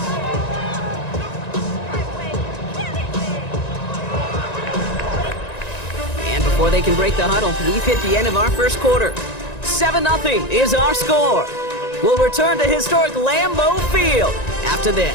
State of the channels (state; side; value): late; right; 1.9 ms